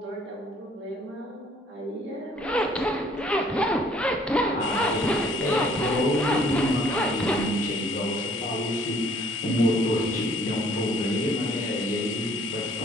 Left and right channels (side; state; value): both; normal; correlation 0.60